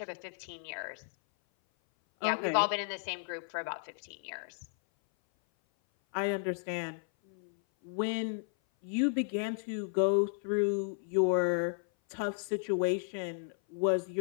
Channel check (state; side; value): silent; right; 55 dB below the other